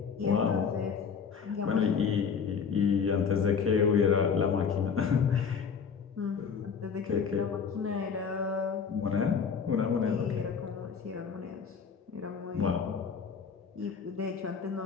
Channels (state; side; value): quieter; right; 6.3 dB